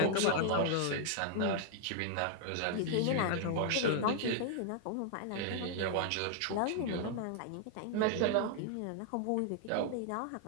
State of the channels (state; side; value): different; both; correlation 0.00